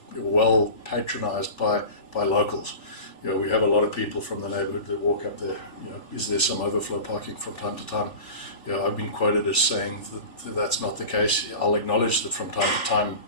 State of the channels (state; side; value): late; right; 3.5 ms